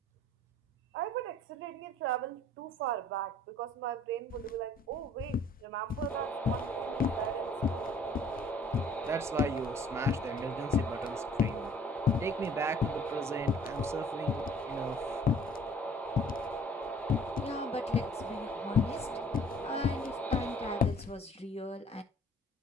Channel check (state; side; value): normal; both; correlation 0.54